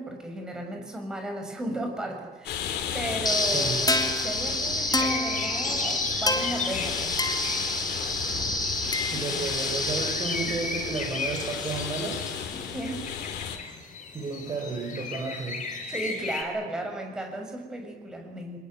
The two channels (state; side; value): normal; both; correlation 0.41